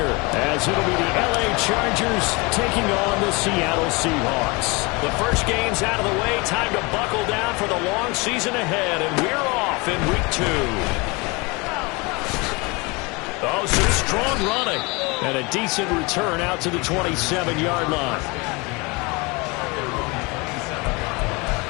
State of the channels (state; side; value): quieter; right; 27.0 dB